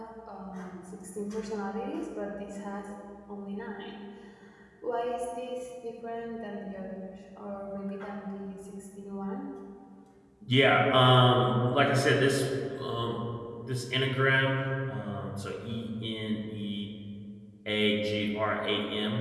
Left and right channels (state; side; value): identical; both; correlation 1.00